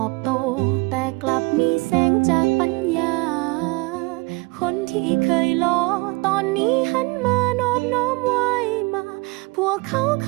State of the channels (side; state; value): left; quieter; 26.4 dB